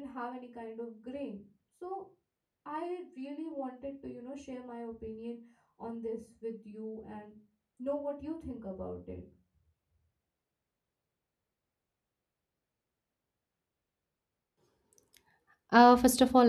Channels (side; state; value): both; identical; correlation 1.00